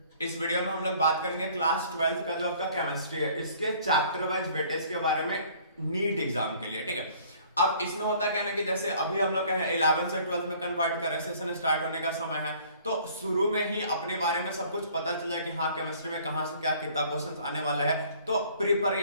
इस वीडियो में हम लोग बात करेंगे क्लास 12th का जो आपका केमिस्ट्री है इसके चैप्टर वाइज वेटेज के बारे में नीट एग्जाम के लिए। ठीक है, अब इसमें होता क्या है ना कि जैसे अभी हम लोग 11 से 12th में कन्वर्ट कर रहे हैं, सेशन स्टार्ट होने का समय है, तो शुरू में ही अपने बारे में सब कुछ पता चला कि हाँ केमिस्ट्री में कहाँ से क्या कितना क्वेश्चन आने वाला है, तो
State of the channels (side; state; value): both; inverted; correlation -0.55